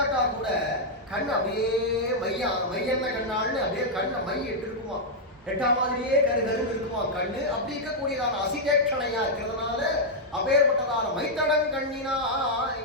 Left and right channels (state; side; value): normal; both; correlation -0.04